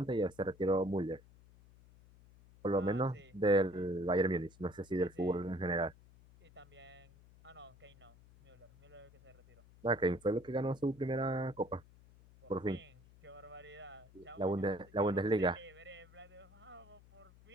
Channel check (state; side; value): noise; left; hum, 24 dB below the sound